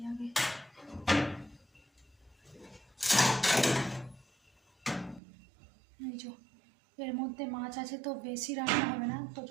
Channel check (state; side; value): drops out; left; at 5.2 s